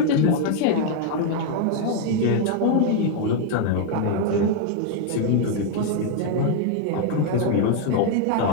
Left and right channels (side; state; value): both; different; correlation 0.00